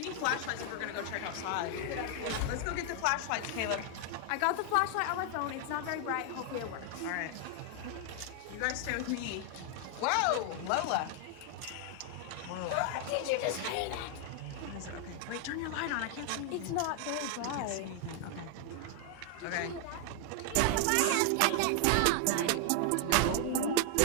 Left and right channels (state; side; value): different; both; correlation 0.00